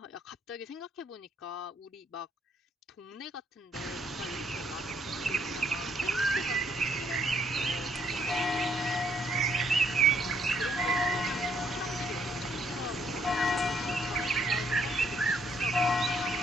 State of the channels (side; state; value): both; normal; correlation 0.69